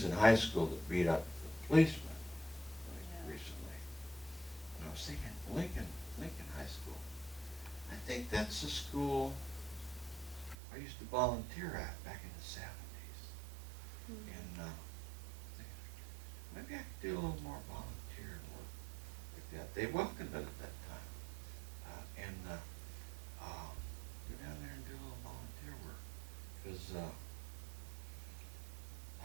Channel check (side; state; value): left; drops out; at 10.6 s